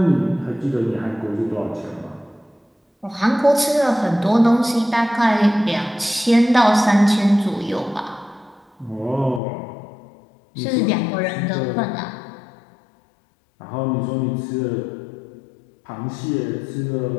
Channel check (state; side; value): drops out; right; at 9.4 s